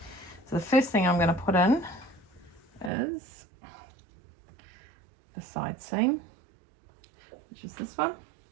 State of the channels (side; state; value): left; drops out; at 2.9 s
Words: So the first thing I'm going to put in is the side seam, which is this one,